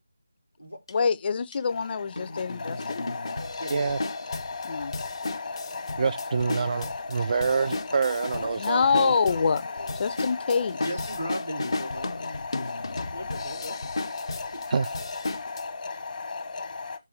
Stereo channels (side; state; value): both; inverted; correlation -0.82